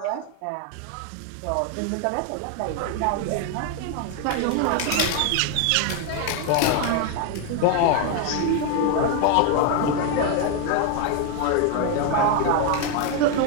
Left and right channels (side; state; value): both; different; correlation 0.01